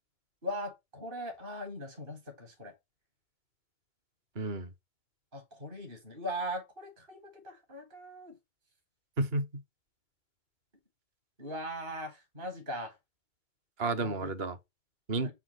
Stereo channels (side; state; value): left; late; 2.2 ms